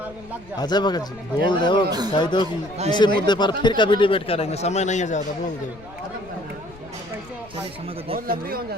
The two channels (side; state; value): left; noise; rumble, 21 dB below the sound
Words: अजय भगत जी बोल दो, कह दो कि इसी मुद्दे पर फिर कभी डिबेट करेंगे, समय नहीं है ज़्यादा, बोल दो।